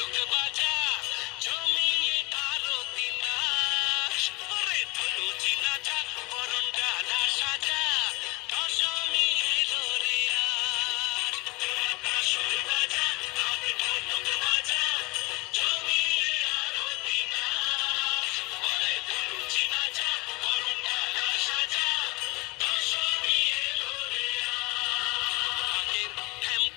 বাজা, জমিয়ে আরতি নাচ। ওরে ধনুচি নাচা, বরণ ডালা সাজা, দশমী এলো রে আজ। তোরা কাসর বাজা, ঢাক ঢোলক বাজা, জমিয়ে আরতি নাচ। ওরে ধনুচি নাচা, বরণ ডালা সাজা, দশমী এলো রে আজ।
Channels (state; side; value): quieter; right; 25.6 dB